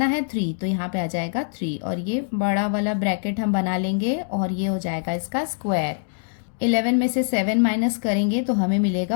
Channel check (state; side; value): silent; right; digital silence